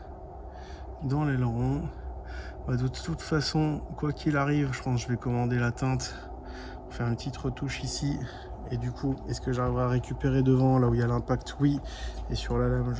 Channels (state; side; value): identical; both; correlation 1.00